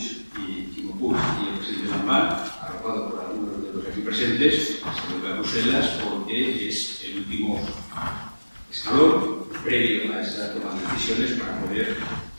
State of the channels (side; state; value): both; inverted; correlation -1.00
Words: y Quimo Puig y el presidente Lambán, arropado por algunos de los aquí presentes, se vuelve a Bruselas porque es el último escalón previo a esa toma de decisiones para poder